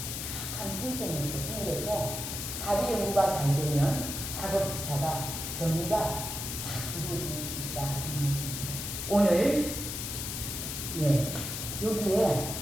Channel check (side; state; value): left; noise; hiss, 5 dB below the sound